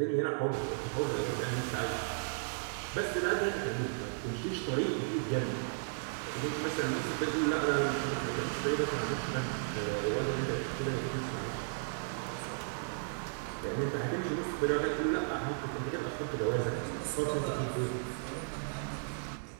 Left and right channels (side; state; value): left; silent; digital silence